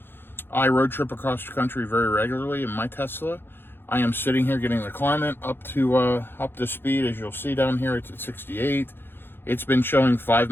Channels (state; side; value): late; right; 0.10 ms